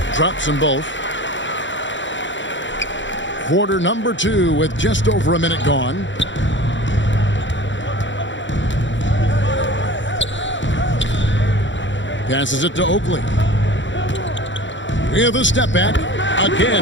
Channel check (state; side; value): late; right; 0.54 ms